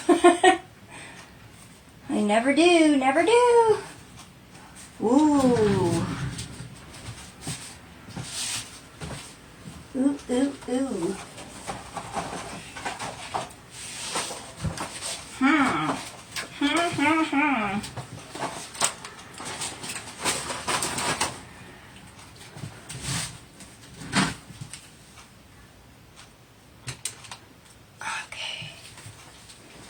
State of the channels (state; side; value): identical; both; correlation 1.00